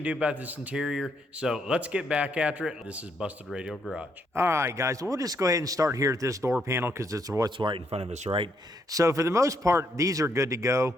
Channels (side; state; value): both; normal; correlation 0.74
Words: do about this interior. So let's get back after it. This is Busted Radio Garage. All right, guys, we'll just go ahead and start here at this door panel because it's what's right in front of us, right? So for the most part, these are good to go.